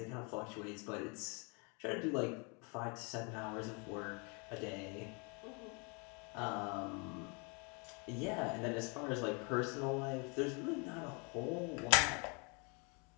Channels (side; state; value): right; quieter; 32.9 dB